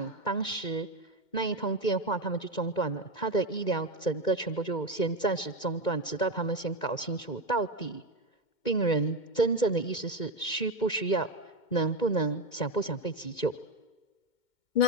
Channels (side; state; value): right; late; 2.2 ms